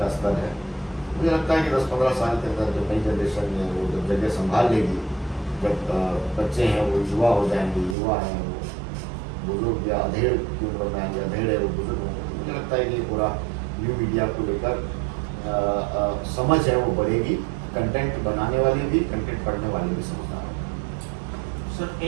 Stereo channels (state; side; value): drops out; left; at 8.0 s